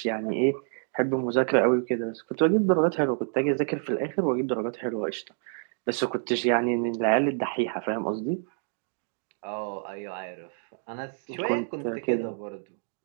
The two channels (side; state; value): left; silent; 59 dB below the other